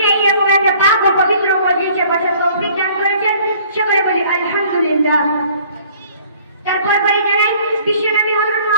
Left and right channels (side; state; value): both; inverted; correlation -0.55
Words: এরকম একটা পাক ও পবিত্র মজলিসে বসার তৌফিক দান করেছেন। সকলে বলি আলহামদুলিল্লাহ। তারপর বলি জানাই বিশ্বনবী হযরত